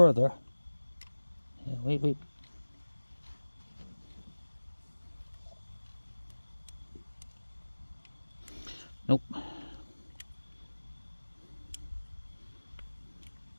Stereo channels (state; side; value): inverted; both; correlation -1.00